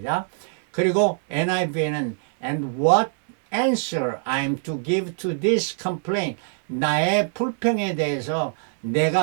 그리고 NIV에는 and what answer I'm to give to this complaint. 나의 불평에 대해서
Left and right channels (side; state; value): left; silent; 63 dB below the other